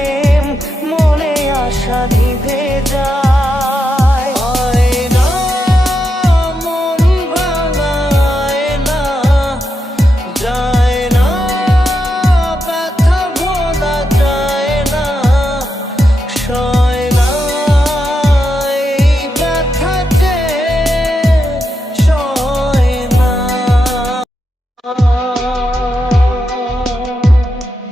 মনে আশা নিভে যায়। আয়না মন ভাঙায় না, যায় না ব্যথা ভোলা যায় না, সয় না এই ব্যথা যে সয় না।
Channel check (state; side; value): normal; both; correlation 0.85